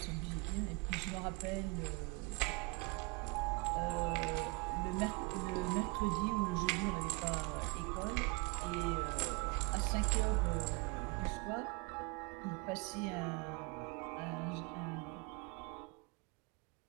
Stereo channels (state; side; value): quieter; left; 28.2 dB